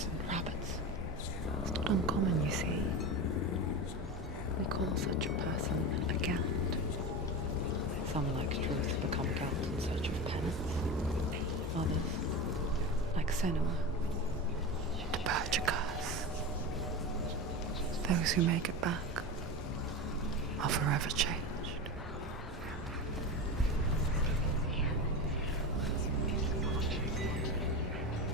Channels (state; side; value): normal; both; correlation 0.23